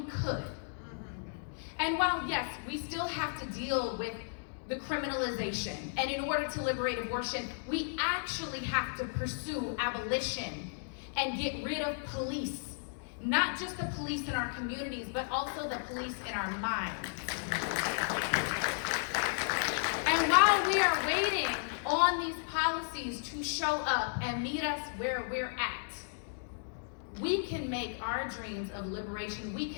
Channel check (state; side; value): silent; right; digital silence